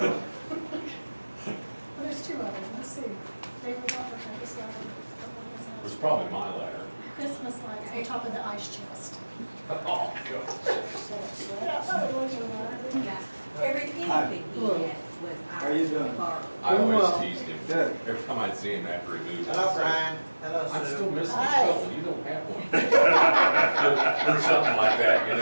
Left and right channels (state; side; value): inverted; both; correlation -1.00